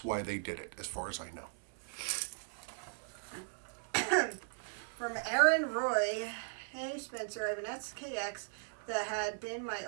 they did it, as far as I know. From Aaron Roy, hey Spencer, I have an SKX that had been my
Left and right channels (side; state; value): left; silent; digital silence